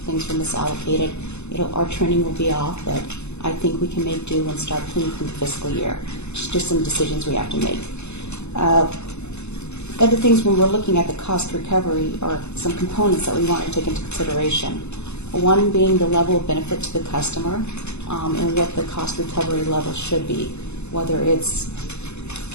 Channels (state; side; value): late; right; 0.81 ms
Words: were misallocated, our trending will be off, but I think we can make do and start clean from the fiscal year. Just some decisions we have to make. Other things when we're looking at the cost recovery are some components that we want to take into consideration. One being the level of benefit to the customer and what the cost recovery level should be, whether it's